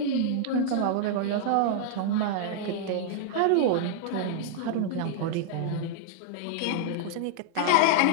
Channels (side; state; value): both; different; correlation -0.01